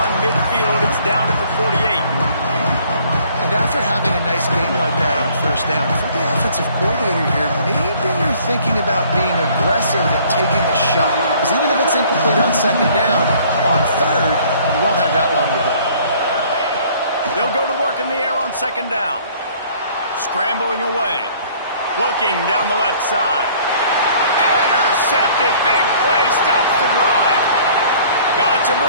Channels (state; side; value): inverted; both; correlation -0.56